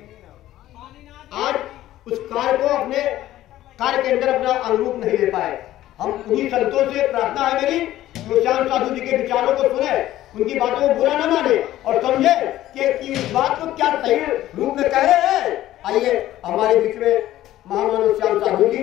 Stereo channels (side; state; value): right; quieter; 14.2 dB